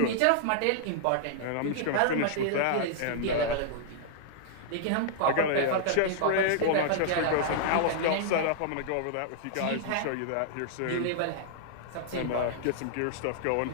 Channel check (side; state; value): both; different; correlation -0.01